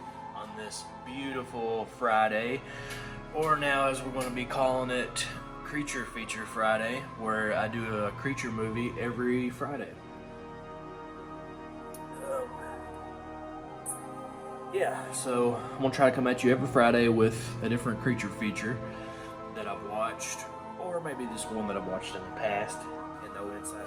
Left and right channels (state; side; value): identical; both; correlation 1.00